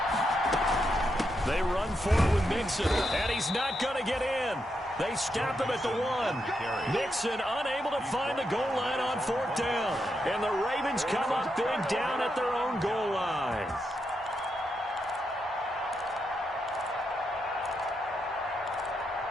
They run for it with Mixon, and he's not going to get in. They stop him at the 1. Mixon unable to find the goal line on 4th down. And the Ravens come up big down at their own goal line.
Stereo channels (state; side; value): normal; both; correlation 0.83